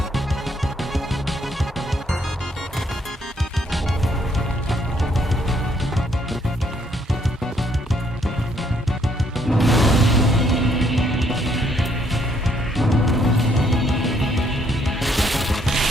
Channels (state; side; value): normal; both; correlation 0.69